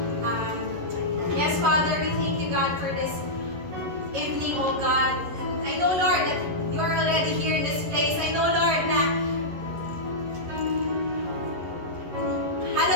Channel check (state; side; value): late; left; 11 ms